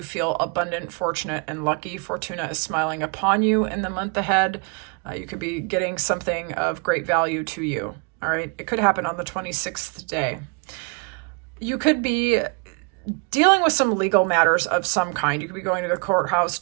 feel abundant, fortunate, and lucky. Fortuna is smiling upon you in the month ahead. You could be getting something of great value to you. All right. It could happen on the 26th day. You could be dealing with some legal matters of some kind. You could be going to the courthouse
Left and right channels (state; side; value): quieter; left; 35.0 dB